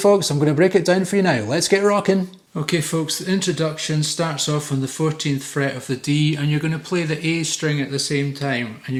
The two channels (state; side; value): identical; both; correlation 1.00